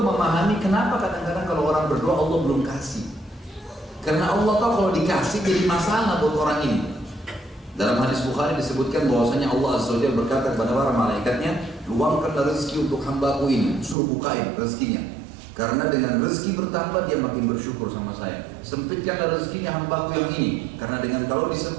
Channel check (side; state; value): left; drops out; at 14.0 s